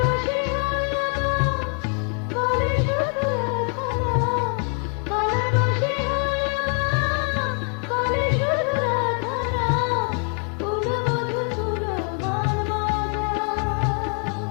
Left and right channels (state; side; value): quieter; right; 39.7 dB